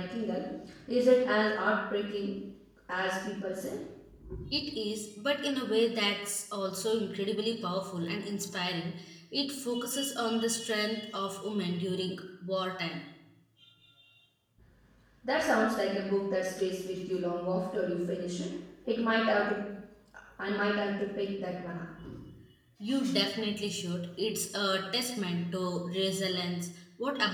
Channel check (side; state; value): both; identical; correlation 1.00